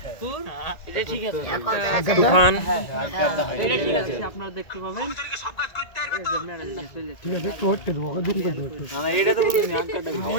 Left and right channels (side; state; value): right; late; 1.9 ms